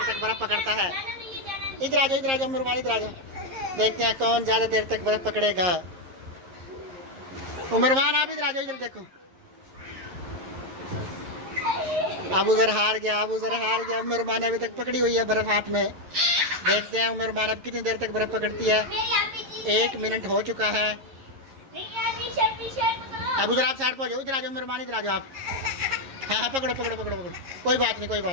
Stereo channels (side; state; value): left; late; 11 ms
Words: तक बर्फ पकड़ता है। इधर आ जाओ, इधर आ जाओ उमरमान, इधर आ जाओ। देखते हैं कौन ज्यादा देर तक बर्फ पकड़ेगा। उमरमान आप इधर आ जाओ, इधर देखो। अब उधर हार गया, अब उधर हार गया। उमरमान अभी तक पकड़ी हुई है बर्फ हाथ में। देखते हैं उमरमान अब कितनी देर तक बर्फ पकड़ती है। 1 मिनट हो चुका है। अब उधर आप साइड पर जाओ, इधर आ जाओ उमरमान, इधर आ जाओ आप। हाँ हाँ पकड़ो पकड़ो पकड़ो पकड़ो, कोई बात नहीं कोई